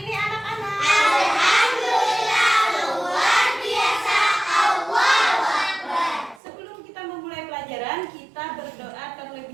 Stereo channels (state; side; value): drops out; left; at 6.4 s